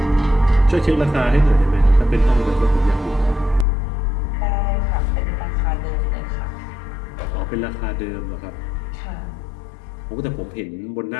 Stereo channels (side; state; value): right; drops out; at 3.7 s